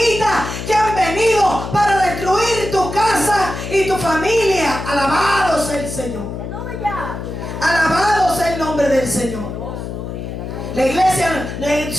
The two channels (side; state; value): left; noise; hum, 7 dB below the sound